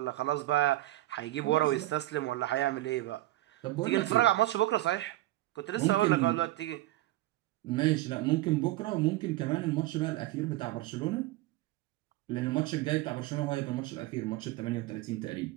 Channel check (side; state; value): left; quieter; 16.8 dB